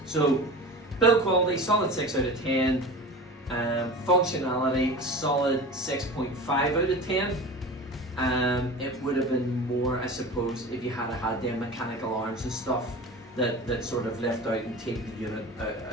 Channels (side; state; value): both; normal; correlation 0.34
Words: so build quality, solid 6 out of 10. Functionality, solid 6.5 out of 10. It would have been more, I suppose, if you had had them mechanical arms and stuff that sort of lift out and take the unit